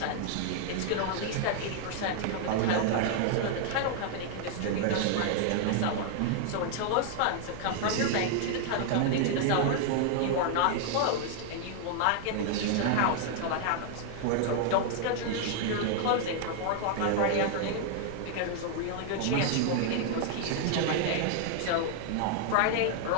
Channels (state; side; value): different; both; correlation 0.00